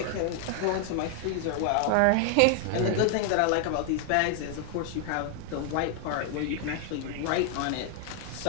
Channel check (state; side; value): different; both; correlation 0.00